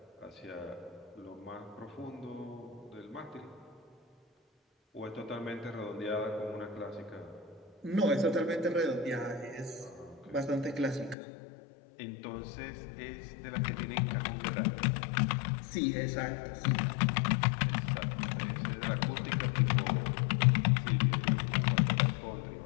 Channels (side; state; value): right; drops out; at 11.2 s